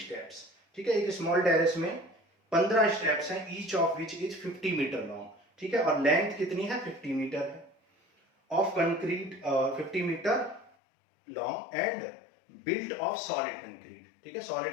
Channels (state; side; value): drops out; right; at 10.7 s